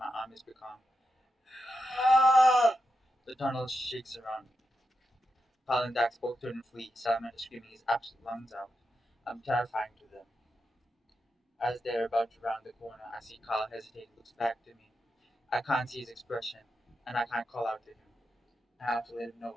arm has become. The tunnel shakes around me. Palandax both turn and flee, Salamander screaming his absolute lungs out. I'm terrifying to them. As they're about to round the corner, I see Carl hesitate and looks back to me. I can't see his expression, and I can't call out to him. I have to let him know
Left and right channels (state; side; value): normal; both; correlation 0.87